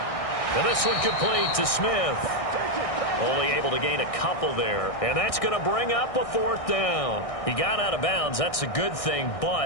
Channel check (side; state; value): right; late; 1.6 ms